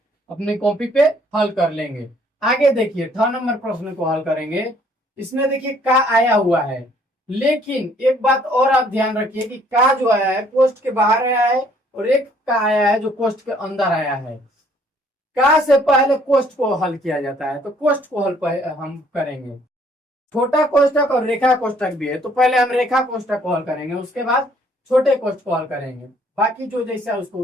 अपनी कॉपी पे हल कर लेंगे। आगे देखिए 6 नंबर प्रश्न को हल करेंगे। इसमें देखिए का आया हुआ है, लेकिन एक बात और आप ध्यान रखिए कि का जो आया है कोष्ठ के बाहर आया है और एक का आया है जो कोष्ठ के अंदर आया है। का से पहले कोष्ठ को हल किया जाता है, तो कोष्ठ को हल हम करेंगे। छोटा कोष्ठक और रेखा कोष्ठक भी है, तो पहले हम रेखा कोष्ठक को हल करेंगे, उसके बाद छोटे कोष्ठ को हल करेंगे। बाकी जो जैसा उसको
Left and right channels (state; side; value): normal; both; correlation 0.62